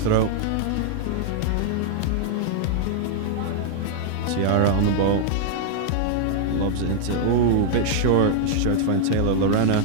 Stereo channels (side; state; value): both; different; correlation -0.01